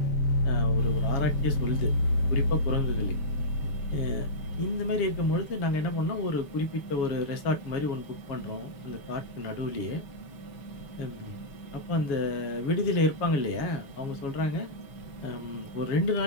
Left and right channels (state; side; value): late; right; 7.2 ms